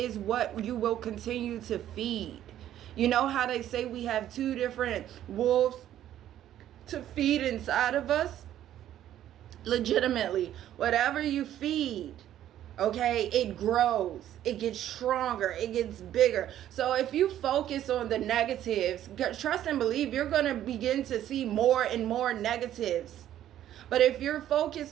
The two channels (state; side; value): quieter; left; 11.8 dB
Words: what you will continue to feed. You know how they say we have two different wolves to feed inside of us? Legitimately, whatever you feed, okay, it grows, it gets stronger, it gets bigger. So if you focus on the negatives, trust and believe you're going to begin to see more and more negatives. But if you're